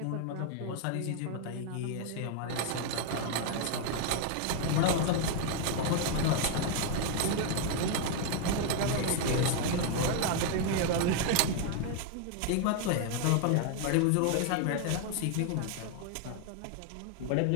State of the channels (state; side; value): different; both; correlation 0.00